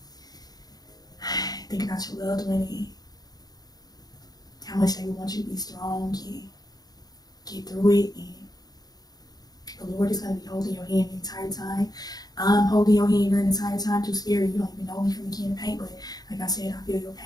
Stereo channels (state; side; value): late; right; 0.19 ms